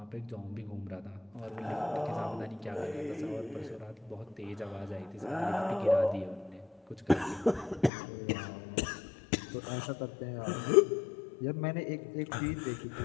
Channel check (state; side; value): drops out; right; at 7.9 s